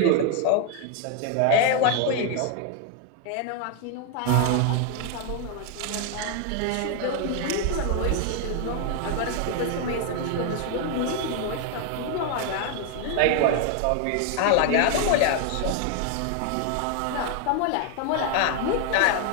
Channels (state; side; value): different; both; correlation 0.01